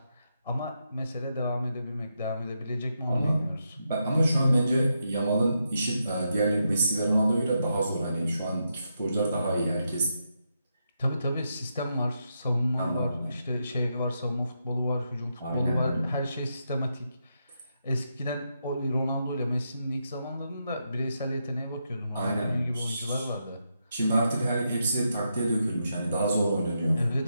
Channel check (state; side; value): inverted; both; correlation -0.83